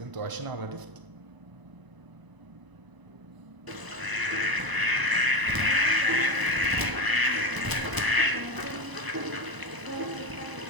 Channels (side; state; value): left; late; 1.0 ms